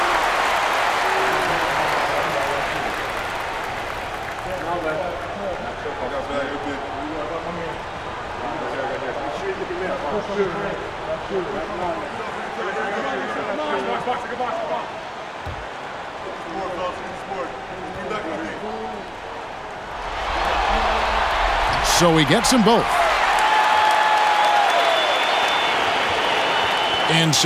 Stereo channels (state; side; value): identical; both; correlation 1.00